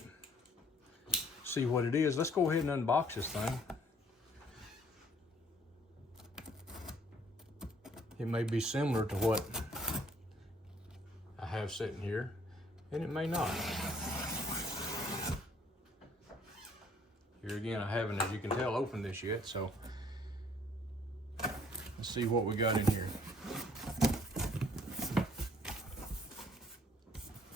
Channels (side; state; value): both; normal; correlation 0.60